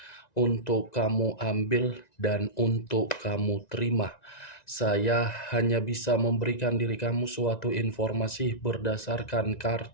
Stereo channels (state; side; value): late; right; 1.9 ms